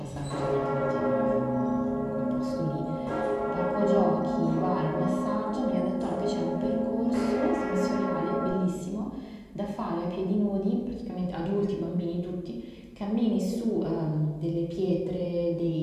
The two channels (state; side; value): identical; both; correlation 1.00